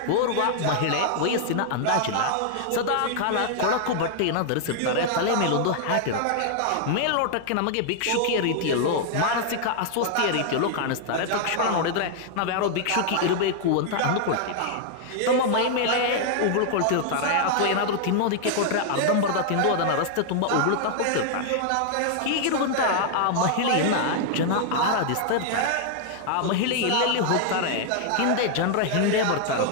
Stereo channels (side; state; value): both; different; correlation -0.01